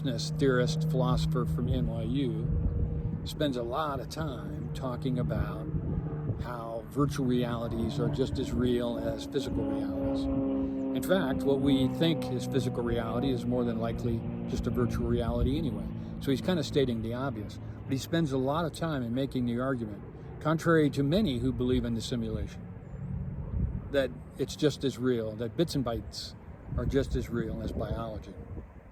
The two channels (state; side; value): identical; both; correlation 1.00